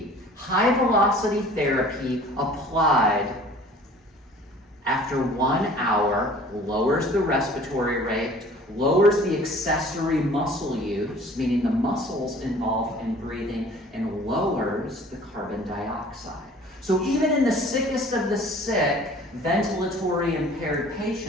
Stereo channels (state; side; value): normal; both; correlation 0.48